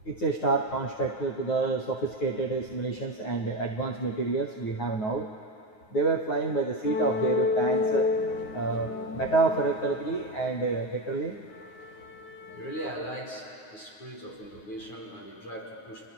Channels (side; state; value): right; late; 9.5 ms